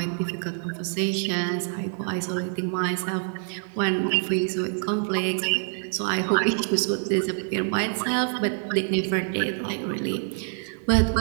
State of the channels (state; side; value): silent; left; 61 dB below the other